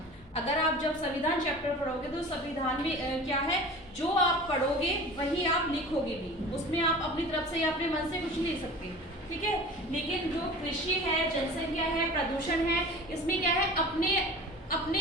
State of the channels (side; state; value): both; normal; correlation 0.38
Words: अगर आप जब संविधान चैप्टर पढ़ोगे तो संविधान में क्या है, जो आप पढ़ोगे वही आप लिखोगे भी, उसमें आप अपनी तरफ से या अपने मन से कुछ नहीं लिख सकते। ठीक है, लेकिन जो कृषि है, जनसंख्या है, प्रदूषण है, इसमें क्या है, अपने